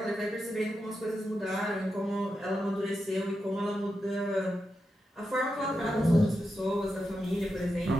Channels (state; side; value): normal; both; correlation 0.88